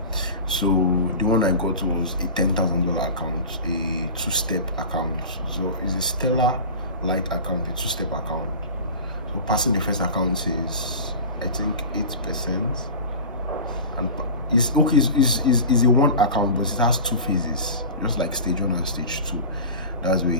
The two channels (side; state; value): both; inverted; correlation -0.32